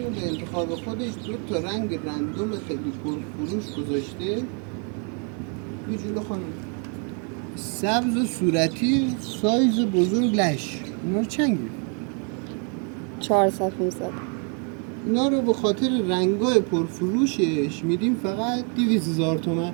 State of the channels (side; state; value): left; quieter; 39.0 dB